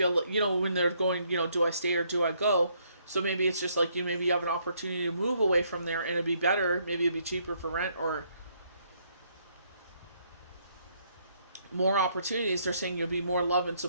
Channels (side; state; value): both; inverted; correlation -0.70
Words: when they're going, do I stay or do I go? So maybe it's just like, maybe you have an opportunity to move away from there and it'd be better. Maybe it'd be cheaper for rent or more opportunities. They're saying you'll be more loved and